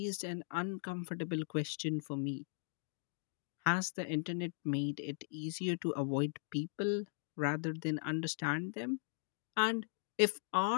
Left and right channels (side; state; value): right; silent; digital silence